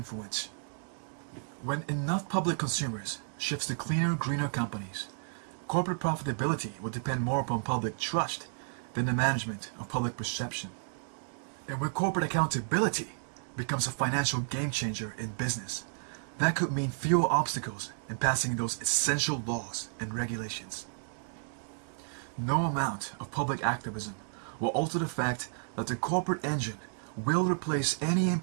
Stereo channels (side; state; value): left; silent; digital silence